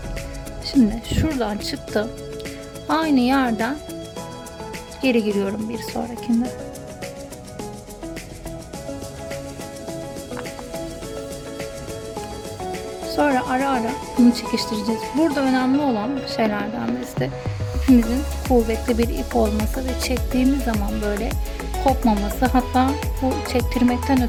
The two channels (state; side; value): identical; both; correlation 1.00